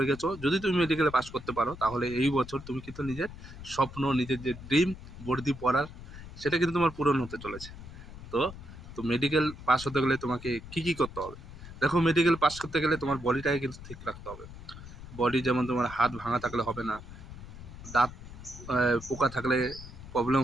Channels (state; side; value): noise; left; rumble, 14 dB below the sound